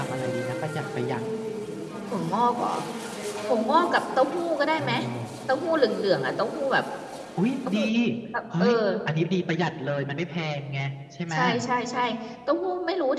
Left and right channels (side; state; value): both; identical; correlation 1.00